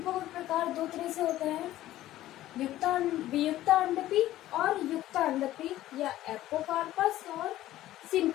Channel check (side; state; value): right; quieter; 14.5 dB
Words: के प्रकार 2 तरह से होते हैं, वियुक्ता अंडपी और युक्त अंडपी या एपोकार्पस और